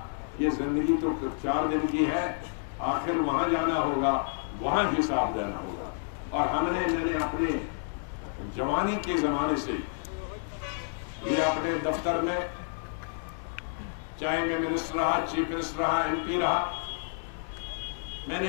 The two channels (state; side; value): silent; right; digital silence